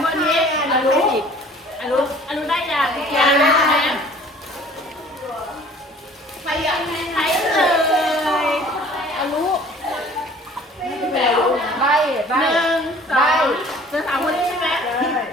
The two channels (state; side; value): normal; both; correlation 0.51